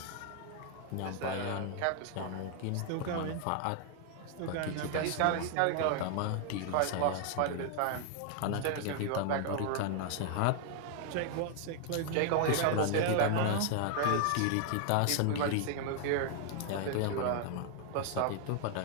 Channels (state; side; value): different; both; correlation 0.00